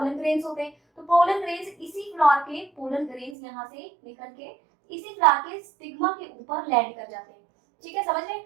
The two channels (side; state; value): left; drops out; at 3.4 s